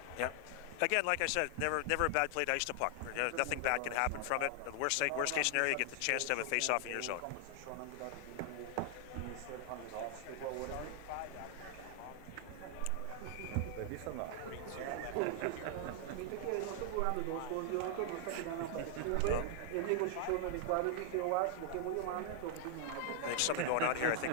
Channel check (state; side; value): different; both; correlation 0.00